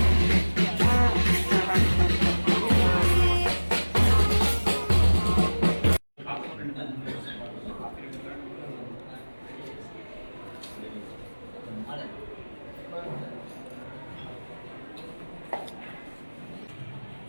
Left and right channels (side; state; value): both; inverted; correlation -1.00